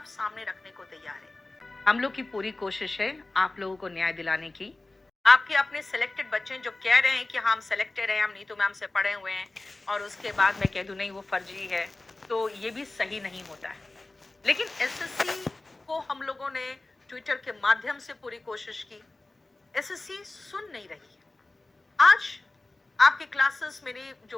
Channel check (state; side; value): quieter; right; 3.0 dB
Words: सामने रखने को तैयार है। हम लोग की पूरी कोशिश है आप लोगों को न्याय दिलाने की। आपके अपने सिलेक्टेड बच्चे जो कह रहे हैं कि हम सिलेक्टेड हैं, हम नीतू मैम से पढ़े हुए हैं, और उसके बाद मैं कह दूं नहीं वो फर्जी है, तो ये भी सही नहीं होता है। लेकिन एसएससी को हम लोगों ने ट्विटर के माध्यम से पूरी कोशिश की, एसएससी सुन नहीं रही है। आज आपके क्लासेस, मेरी